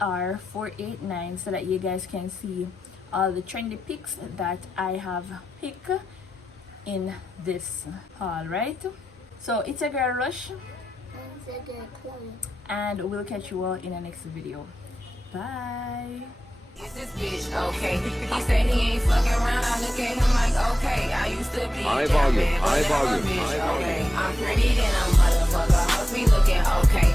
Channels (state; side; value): normal; both; correlation 0.91